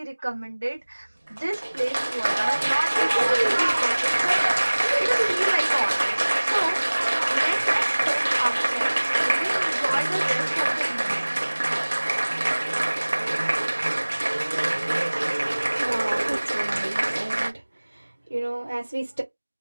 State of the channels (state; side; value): inverted; both; correlation -1.00